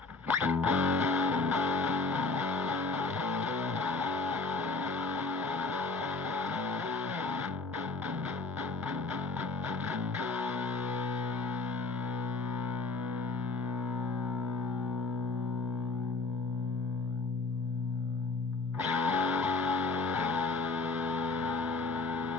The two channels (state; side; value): quieter; right; 3.9 dB